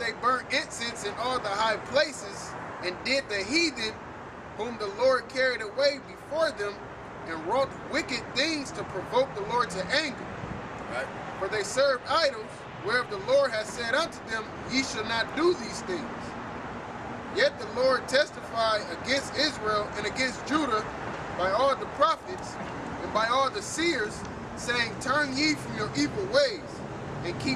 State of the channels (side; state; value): both; identical; correlation 1.00